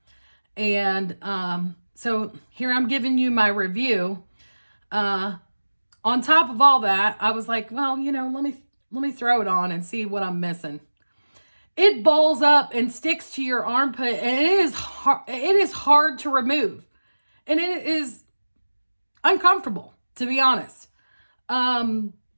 And so here I'm giving you my review. On top of all that, I was like, well, you know, let me throw it on and see what I'm missing. It balls up and sticks to your armpit, and it is hard to remove. And it is uncomfortable, to be honest.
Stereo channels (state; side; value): inverted; both; correlation -1.00